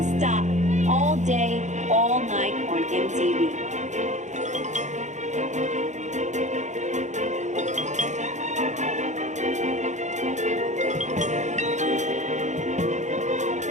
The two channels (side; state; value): left; late; 0.34 ms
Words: all day, all night on MTV.